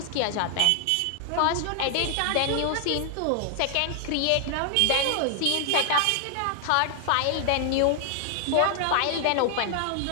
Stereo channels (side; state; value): both; different; correlation 0.00